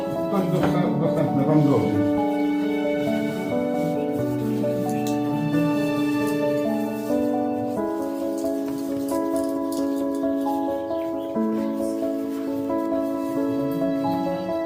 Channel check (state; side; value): identical; both; correlation 1.00